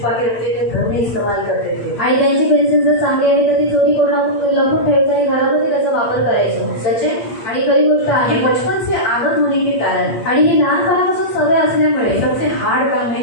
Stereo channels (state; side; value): late; right; 8.6 ms